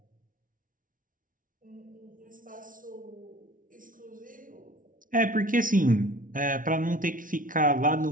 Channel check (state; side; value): late; left; 0.39 ms